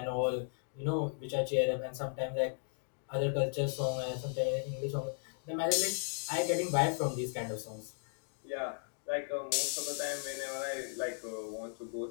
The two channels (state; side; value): silent; right; digital silence